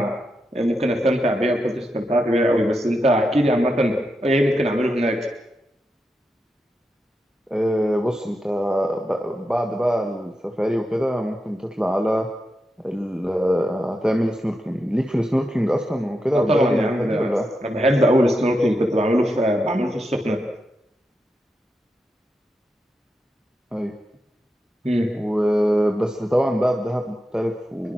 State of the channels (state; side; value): normal; both; correlation 0.86